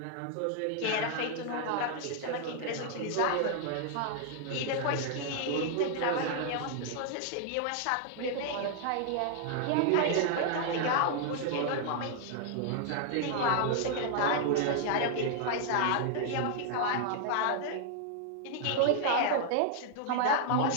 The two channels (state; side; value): different; both; correlation -0.01